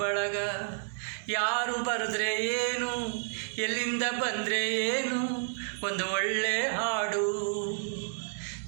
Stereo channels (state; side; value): silent; left; digital silence